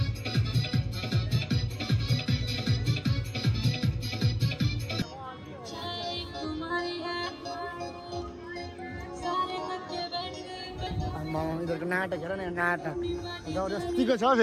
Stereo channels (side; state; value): both; identical; correlation 1.00